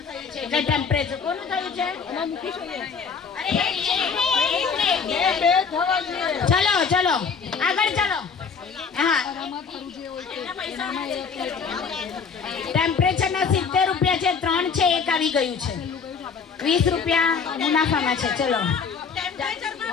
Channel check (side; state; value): right; quieter; 5.8 dB